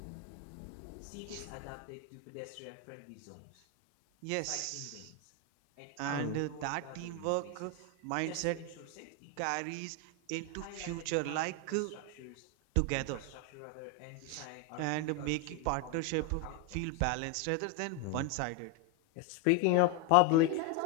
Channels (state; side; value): different; both; correlation 0.01